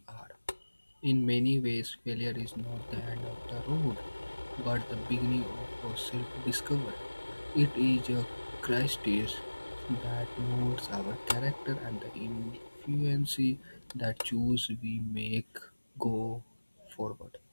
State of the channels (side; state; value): both; inverted; correlation -1.00